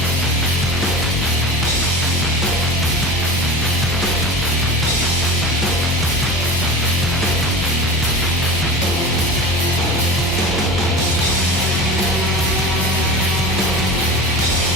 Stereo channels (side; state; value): both; normal; correlation 0.31